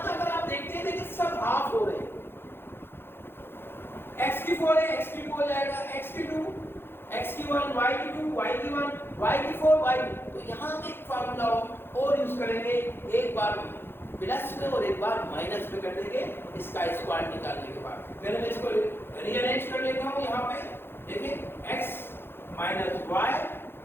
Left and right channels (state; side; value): late; right; 0.11 ms